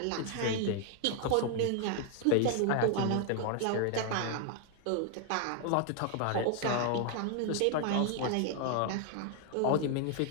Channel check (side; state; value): both; different; correlation 0.00